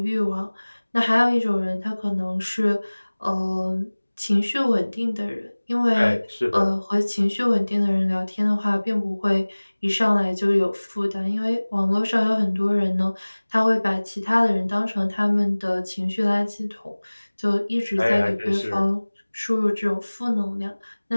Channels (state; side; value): inverted; both; correlation -1.00